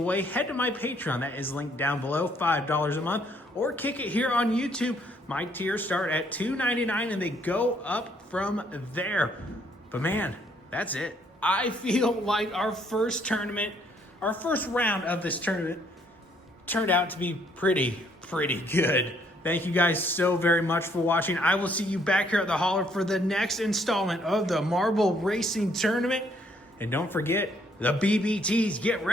way, head to my Patreon. That is linked down below, $5 a month, or kick it here on YouTube. My tiers start at $2.99, and they go up from there. But man, that's it. I feel like our first round of this tournament turned out to be pretty good. Thank you guys so very much for watching. I will see you back here at the Hauler for the next installment of the Marble Racing Tournament. And don't forget, the BBTs get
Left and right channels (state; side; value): normal; both; correlation 0.67